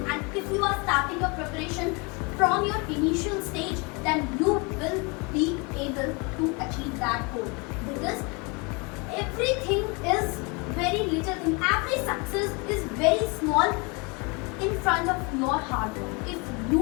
and if you are starting your preparation from your initial stage, then you will be able to achieve that goal. Because everything is very little thing. Every success is very small in front of your hard work. If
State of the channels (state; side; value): quieter; right; 29.9 dB